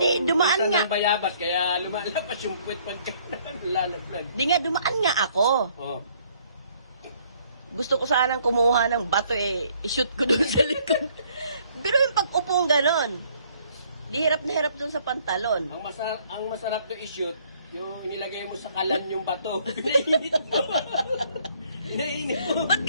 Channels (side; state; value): both; inverted; correlation -0.63